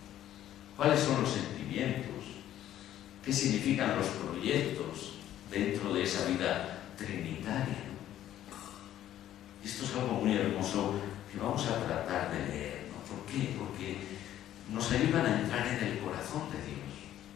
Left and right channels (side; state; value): right; quieter; 12.2 dB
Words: ¿Cuáles son los sentimientos? ¿Qué significan los proyectos dentro de esa vida trinitaria? Esto es algo muy hermoso que vamos a tratar de leer, ¿no? ¿Por qué? Porque nos ayudan a entrar en el corazón de Dios.